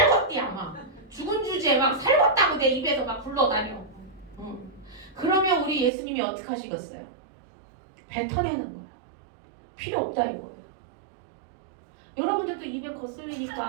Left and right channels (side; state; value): left; drops out; at 5.9 s